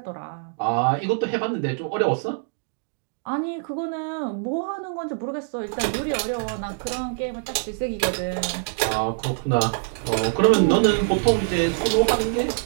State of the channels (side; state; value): left; silent; digital silence